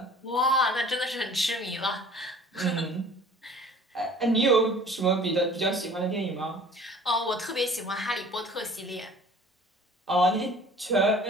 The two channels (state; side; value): normal; both; correlation 0.48